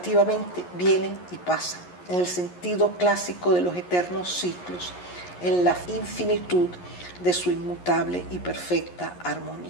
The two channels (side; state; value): right; late; 11 ms